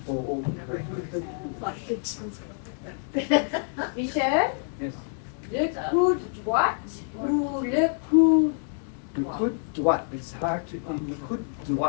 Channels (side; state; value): right; silent; 60 dB below the other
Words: Michel, Yes. le coude droite ou le coude Le coude droit, it's hard to, le coude